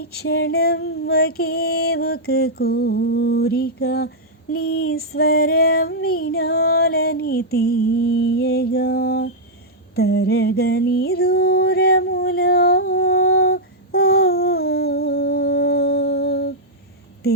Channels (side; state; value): both; normal; correlation -0.07